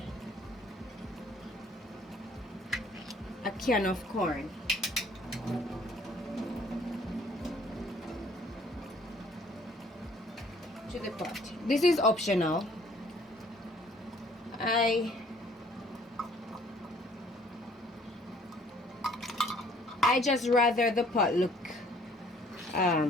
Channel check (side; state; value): both; normal; correlation 0.59